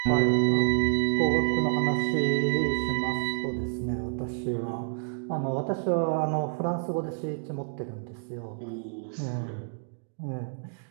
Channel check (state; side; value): silent; left; digital silence